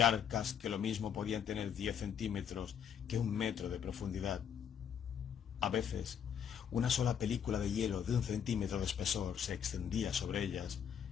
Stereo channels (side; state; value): right; quieter; 8.2 dB